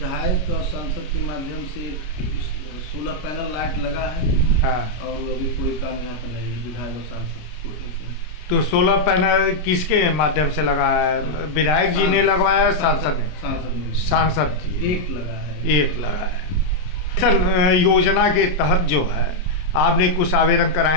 और सांसद के माध्यम से सोलर पैनल लाइट लगा है। और अभी कोई काम यहाँ पर नहीं है विधायक और सांसद कोटे से। तो सोलर पैनल किसके माध्यम से लगा है? विधायक जी ने लगवाया? सांसद ने? सांसद जी एक लगा है। सर, योजना के तहत जो है आपने कुछ आवेदन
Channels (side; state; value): right; late; 33 ms